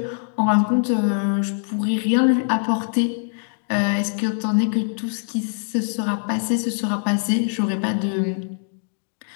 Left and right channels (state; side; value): silent; right; digital silence